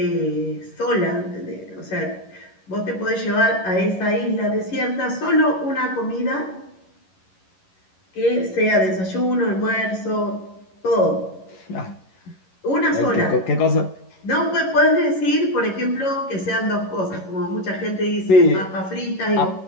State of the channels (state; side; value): late; right; 11 ms